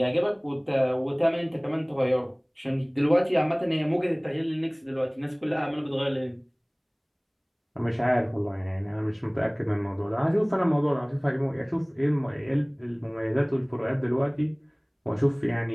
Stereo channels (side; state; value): both; identical; correlation 1.00